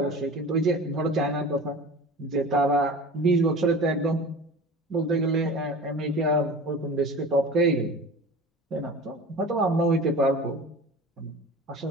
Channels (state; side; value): normal; both; correlation 0.37